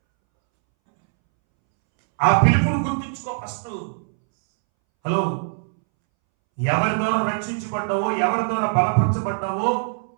ఆ పిలుపును గుర్తించుకో ఫస్ట్. హలో, ఎవరి ద్వారా రక్షించబడ్డావో, ఎవరి ద్వారా బలపరచబడ్డావో,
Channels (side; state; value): left; silent; 64 dB below the other